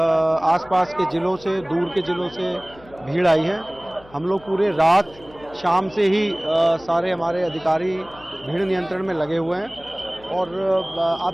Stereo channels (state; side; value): noise; left; hum, 24 dB below the sound